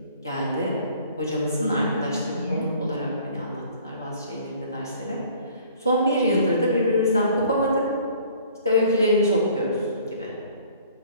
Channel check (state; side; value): inverted; both; correlation -0.53